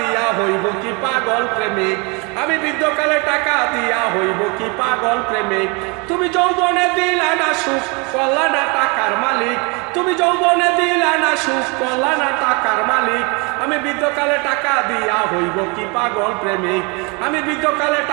হইব কি পাগল প্রেমিক, আমি বৃদ্ধকালে টাকা দিয়া হইব কি পাগল প্রেমিক। তুমি যৌবনে দিলা না সুখ করলা না টাকার মালিক, তুমি যৌবনে দিলা না সুখ করলা না টাকার মালিক। আমি বৃদ্ধকালে টাকা দিয়া হইব কি পাগল প্রেমিক, আমি বৃদ্ধকালে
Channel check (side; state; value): left; quieter; 30.5 dB